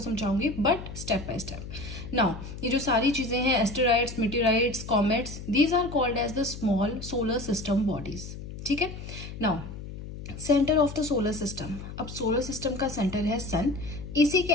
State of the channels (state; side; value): noise; left; hum, 11 dB below the sound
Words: समझाऊंगी, but step by step. Now ये जो सारी चीजें हैं, asteroids, meteorites, comets, these are called as the small solar system bodies, ठीक है। Now centre of the solar system, अब सोलर सिस्टम का सेंटर है सन, इसी के